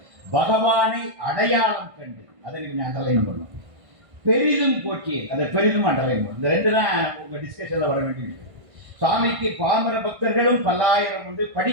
பகவானை அடையாளம் கண்டு அதை கொஞ்சம் அண்டர்லைன் பண்ணும். பெரிதும் போற்றி அதை பெரிதும் அண்டர்லைன் பண்ணும். இந்த ரெண்டு தான் உங்க டிஸ்கஷன்ல வர வேண்டிய விஷயம். சுவாமிக்கு பாமர பக்தர்களும் பல்லாயிரம் உண்டு,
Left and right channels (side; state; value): left; late; 1.5 ms